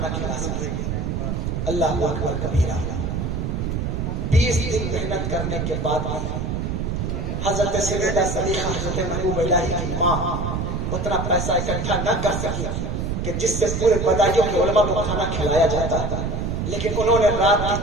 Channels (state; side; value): noise; right; rumble, 2 dB below the sound